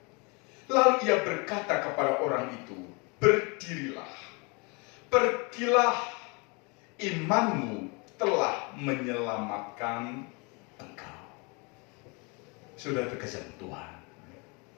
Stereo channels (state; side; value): quieter; right; 30.5 dB